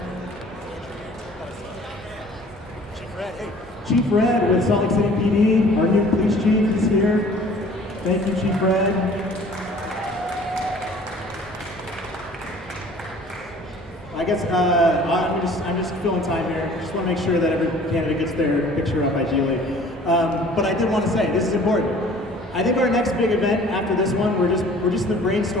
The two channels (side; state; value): both; normal; correlation 0.50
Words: Chief Red with Salt Lake City PD, our new police chief is here. Thank you, Chief Red. I guess I'm just filling time here. Just want to make sure that every candidate gets their picture up ideally. But I did want to say this is important. I think our next big event after this one, we're just in the